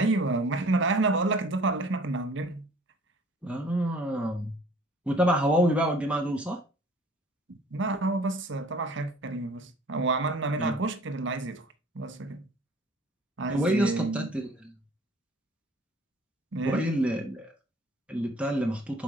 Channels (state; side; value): normal; both; correlation 0.52